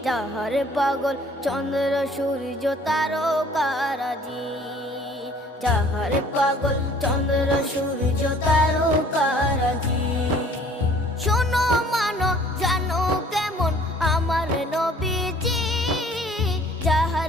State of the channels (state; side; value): normal; both; correlation 0.54